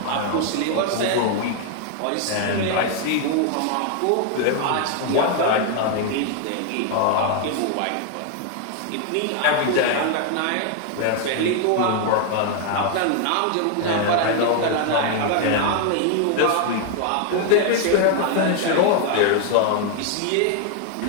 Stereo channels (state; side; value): different; both; correlation 0.00